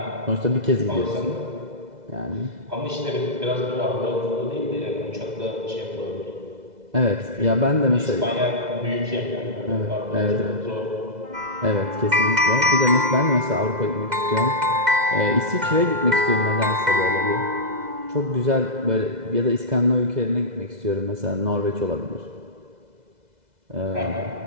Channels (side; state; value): left; late; 2.0 ms